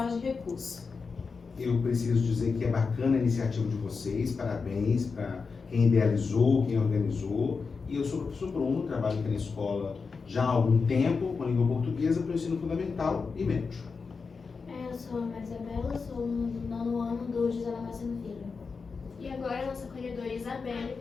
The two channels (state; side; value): quieter; right; 4.9 dB